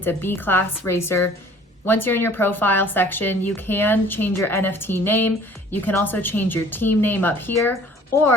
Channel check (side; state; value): both; normal; correlation 0.52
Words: a B-class racer. Once you're in your profile section, you can change your NFT name. You can also change your team name up here,